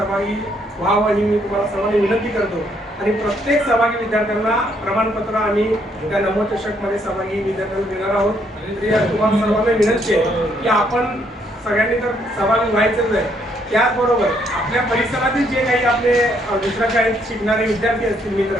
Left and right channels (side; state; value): both; normal; correlation 0.71